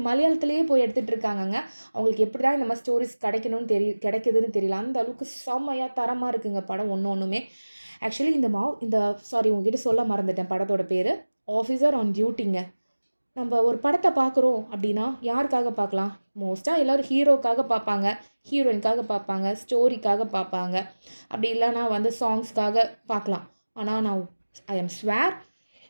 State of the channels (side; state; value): both; inverted; correlation -1.00